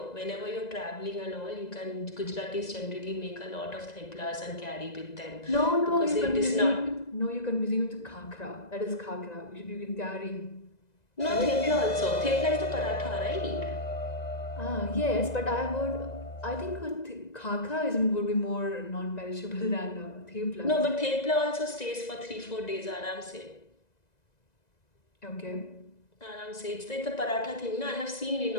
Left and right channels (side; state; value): right; late; 1.9 ms